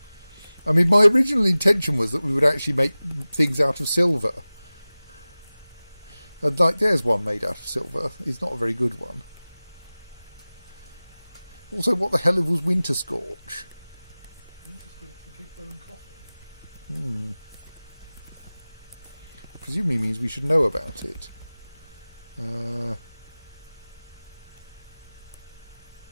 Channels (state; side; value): inverted; both; correlation -0.98